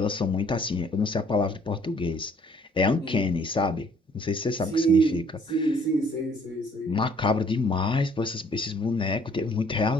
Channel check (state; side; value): normal; both; correlation 0.60